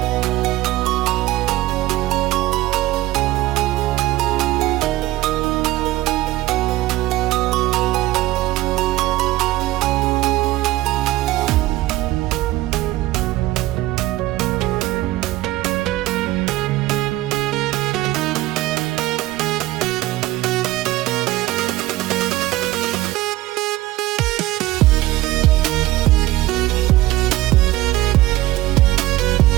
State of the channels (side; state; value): left; quieter; 17.2 dB